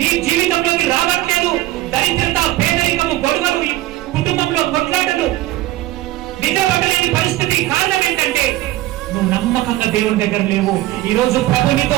జీవితంలోకి రావట్లేదు. దరిద్రత, పేదరికము, గొడవలు, కుటుంబంలో కొట్లాటలు, నిలబడలేని పరిస్థితి కారణం ఏంటంటే నువ్వు నమ్మకంగా దేవుని దగ్గర లేవు. ఈ రోజు ప్రభు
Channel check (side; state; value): left; quieter; 16.5 dB